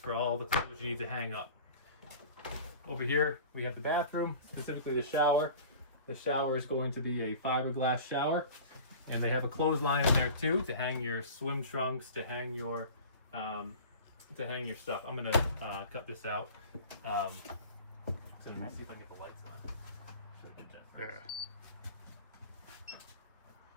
all the clothes you need to hang up. Over here we have the bathroom, specifically the shower. The shower is going to be a fiberglass shower, and they have a clothesline in there too to hang your swim trunks, to hang your to hang your stuff. I'm gonna cut this out. So let's see if I can get the lights on. Should I get that first?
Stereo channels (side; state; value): both; inverted; correlation -0.40